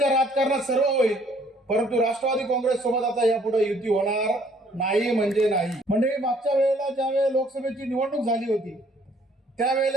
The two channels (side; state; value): both; normal; correlation 0.61